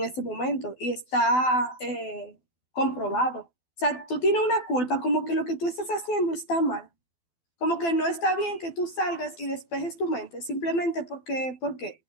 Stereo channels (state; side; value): late; right; 12 ms